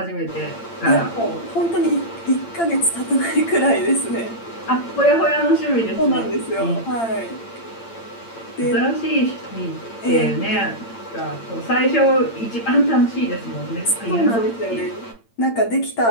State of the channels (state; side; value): late; right; 8.8 ms